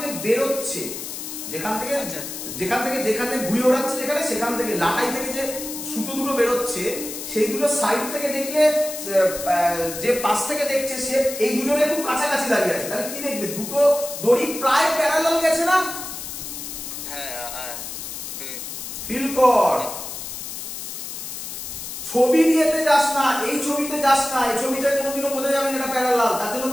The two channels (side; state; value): left; noise; hiss, 8 dB below the sound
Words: বেরোচ্ছে, যেখান থেকে যেখানে ঘুরে ওড়াচ্ছে, যেখানে সেখান থেকে লাটাই থেকে যে সুতো দুটো বেরোচ্ছে, সেই দুটো সাইড থেকে দেখলে যে পাশ থেকে দেখছে সে এই দুজনে খুব কাছাকাছি দাঁড়িয়ে আছে, তাহলে কি দেখবে? দুটো দড়ি প্রায় প্যারালাল গেছে না? হ্যাঁ। ফিল কর। ছবি দিয়েতে যাস না, এই ছবিতে যাস না, এই ছবিটা কোনোদিনও বোঝা যাবে না এটা প্যারালাল, তার জন্য